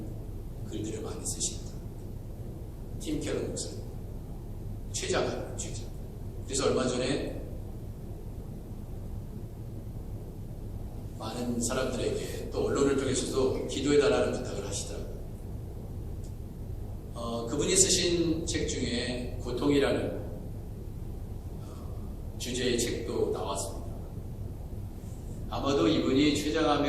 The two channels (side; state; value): both; identical; correlation 1.00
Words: 글들을 많이 쓰십니다. 팀 켈러 목사님, 최자가. 그래서 얼마 전에 많은 사람들에게 또 언론을 통해서도 기도해달라는 부탁을 하시더라고요. 그분이 쓰신 책 중에 고통이라는 주제의 책도 나왔습니다. 아마도 이분이